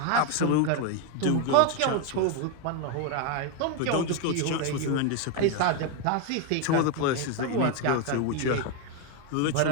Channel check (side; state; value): both; different; correlation 0.02